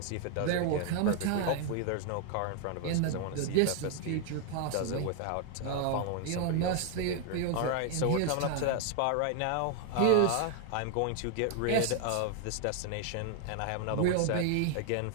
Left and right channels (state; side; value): different; both; correlation 0.00